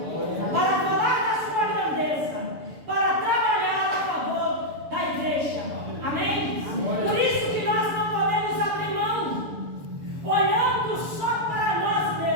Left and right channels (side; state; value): left; late; 6.8 ms